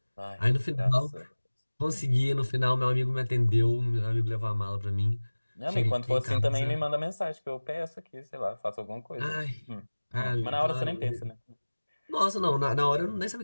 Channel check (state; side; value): inverted; both; correlation -1.00